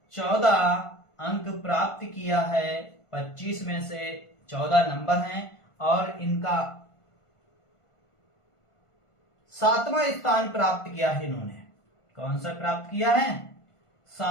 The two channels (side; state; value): right; late; 1.5 ms